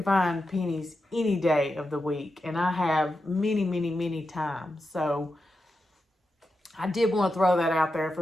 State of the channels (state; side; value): normal; both; correlation 0.89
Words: find pennies any day of the week. And I have many, many, many times. So I did want to throw that out there